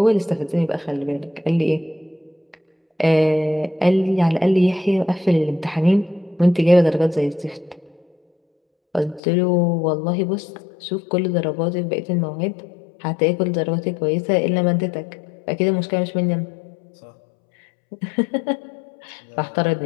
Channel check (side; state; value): right; drops out; at 9.2 s